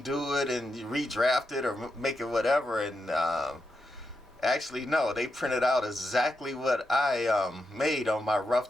it and redraft it or make it whatever, and actually no, they printed out exactly what I made on my rough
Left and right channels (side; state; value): both; normal; correlation 0.86